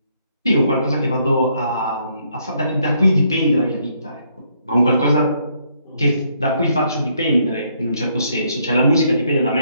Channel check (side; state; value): both; inverted; correlation -0.71